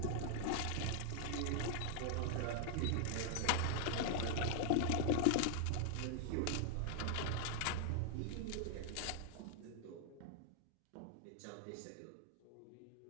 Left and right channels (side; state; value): both; different; correlation -0.01